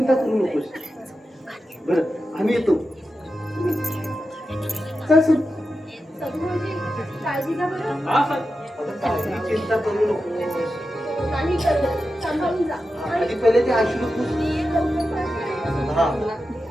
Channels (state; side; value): normal; both; correlation 0.90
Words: करू नकोस. बरं, आम्ही येतो. चल सर. सगळ्यांची काळजी घ्या बरं. हा सर. काही चिंता करू नकोस. नाही करत. सांभाळून जा. आधी पहिले ते अश्रू पुस. हा.